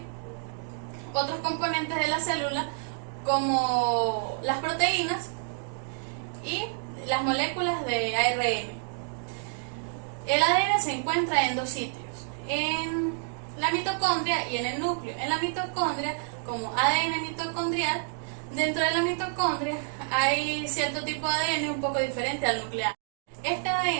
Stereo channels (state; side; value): silent; left; digital silence